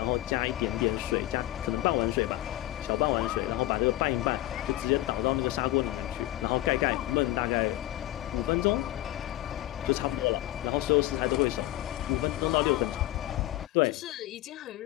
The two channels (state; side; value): quieter; right; 16.0 dB